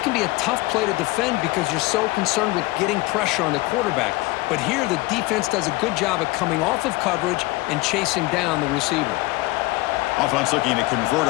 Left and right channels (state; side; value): quieter; right; 20.9 dB